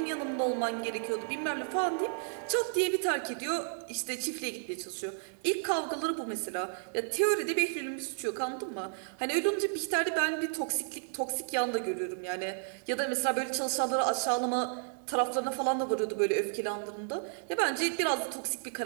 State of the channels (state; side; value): silent; left; digital silence